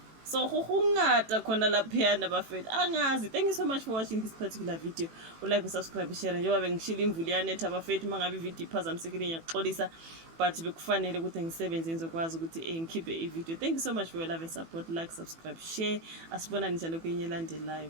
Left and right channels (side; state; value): left; late; 18 ms